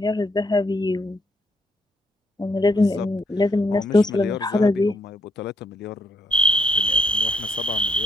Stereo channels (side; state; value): both; normal; correlation 0.73